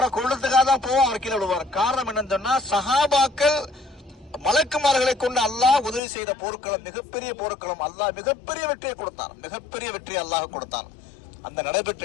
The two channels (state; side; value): drops out; right; at 6.0 s